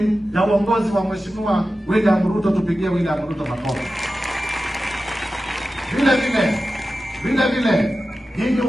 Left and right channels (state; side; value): normal; both; correlation 0.93